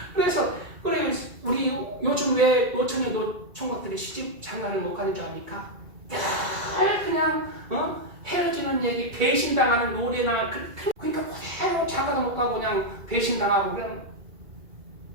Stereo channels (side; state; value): left; late; 2.2 ms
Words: 그래서 우리 요즘 왜 노처녀 노총각들이 시집 장가를 못 가는 줄 압니까? 그냥 헤어지는 얘기 배신당하는 노래나 그러니까 그대로 장가도 못 가고 그냥 배신당하고 그냥.